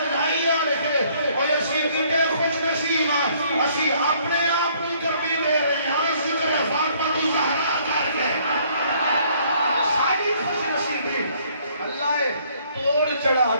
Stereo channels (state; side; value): inverted; both; correlation -0.62